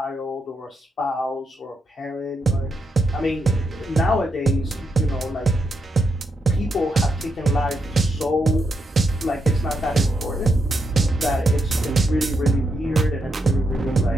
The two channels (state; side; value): normal; both; correlation 0.82